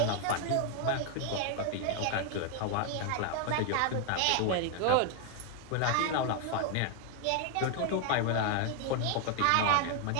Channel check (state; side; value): different; both; correlation 0.01